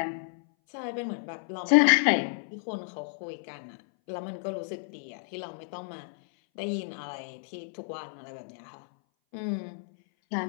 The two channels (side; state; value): right; silent; 57 dB below the other